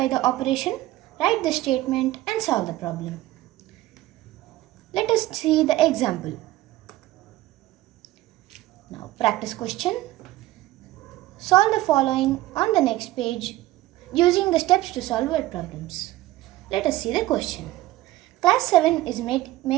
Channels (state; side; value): quieter; left; 16.4 dB